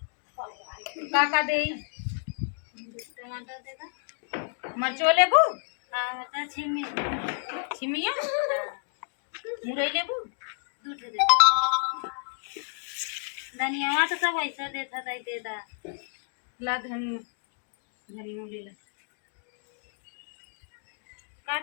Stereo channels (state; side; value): silent; right; digital silence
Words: काका दे टमाटर दे दा, मरचो लेबू। हाँ तो छिमी, छिमिया मुरई लेबू। दूध दे दा, धनिया तो सब ऐसा देता था दे दा। ला धनिया, धनिया ले ला। का